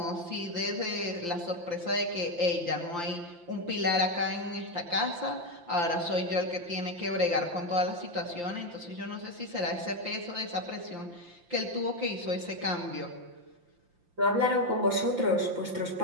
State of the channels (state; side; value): late; left; 5.8 ms